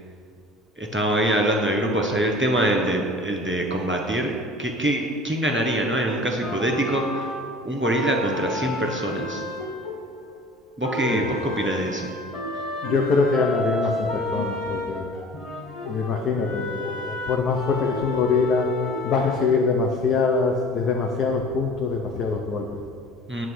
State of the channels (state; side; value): normal; both; correlation 0.45